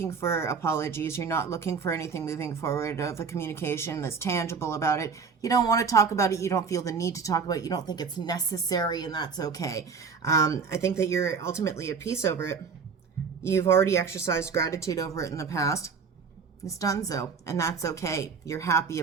for apologies. You're not looking for anything moving forward of a communication that's tangible about it. You don't want to talk about it. You don't feel the need to talk about it. You don't think it's necessary, and that's okay. I think that you're ultimately at peace over it. You've already exercised gratitude over it in the past. It's done so, and that's okay. You're happy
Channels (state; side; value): quieter; left; 5.6 dB